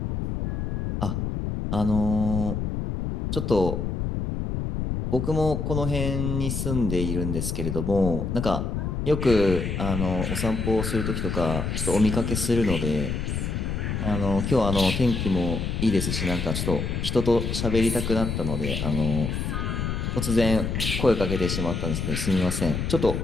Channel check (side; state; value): left; noise; rumble, 2 dB below the sound